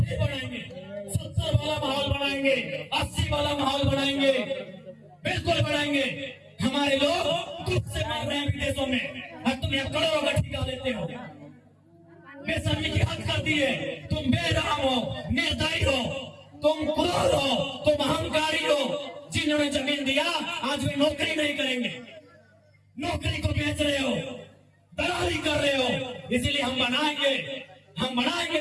बनाएंगे, 70 वाला माहौल बनाएंगे, 80 वाला माहौल बनाएंगे, बिल्कुल बनाएंगे। हमारे लोग दुख से मर रहे हैं विदेशों में, और तुम यहाँ करोड़ों का ठेका लेते हो। बेशर्मी की हद कर दिए। तुम बेरहम हो, निर्दयी हो, तुम क्रूर हो, तुम अहंकारी हो। जिन्होंने जमीन दिया आज वे नौकरी नहीं करेंगे, नौकरी को बेच रहे हो, दलाली कर रहे हो। इसीलिए हम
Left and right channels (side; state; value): both; identical; correlation 1.00